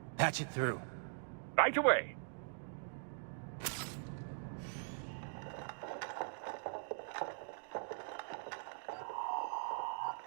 Patch it through. Right away.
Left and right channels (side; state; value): left; silent; digital silence